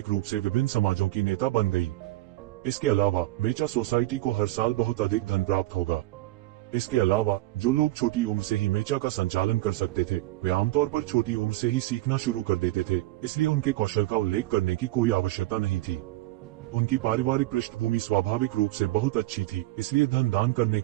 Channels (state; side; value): quieter; left; 17.8 dB